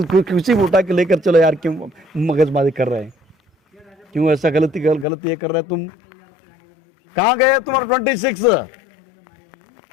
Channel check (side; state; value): right; drops out; at 5.1 s